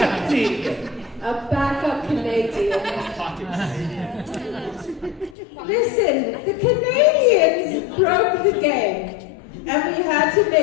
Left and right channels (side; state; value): right; drops out; at 5.4 s